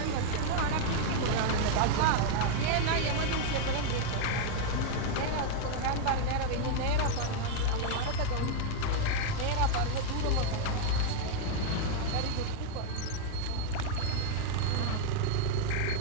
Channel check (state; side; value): different; both; correlation 0.00